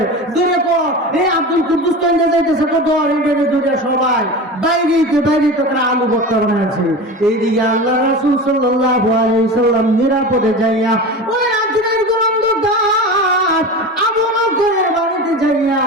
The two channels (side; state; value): both; normal; correlation 0.29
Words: এই আব্দুল কুদ্দুস কেন্দ্রে যাইতেছে তো ধর, এই ধরে সবাই বাইরে তারা আলু ভর্তা বানাইছে। এইদিকে আল্লাহ রাসূল সাল্লাল্লাহু আলাইহি ওয়াসাল্লাম নিরাপদে যাইয়া ওই রাত্রির অন্ধকার আবু বকরের বাড়িতে যাইয়া